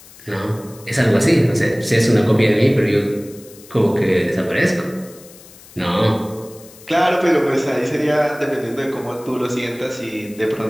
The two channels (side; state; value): left; noise; hiss, 22 dB below the sound